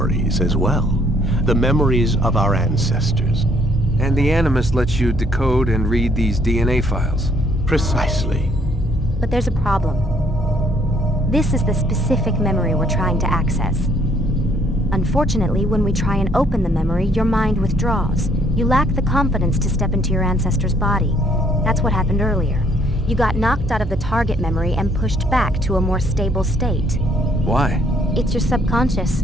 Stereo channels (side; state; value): both; normal; correlation 0.65